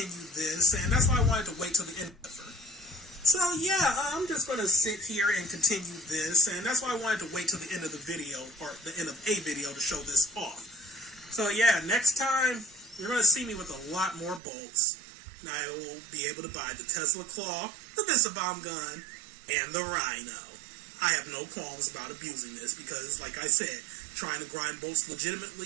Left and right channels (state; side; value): drops out; left; at 14.4 s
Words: this, and that's why I wanted to wait till the end. So yeah, I'm just going to sit here and continue this, and that's why I wanted to wait till the end of the video, or the end of a video, to show this off. So yeah, next time, you're going to see me with a lot more bolts, and I will be able to buy the Tesla Claw, the missile bomb gun, and the Rhino. I have no qualms about abusing this, because like I said, trying to grind bolts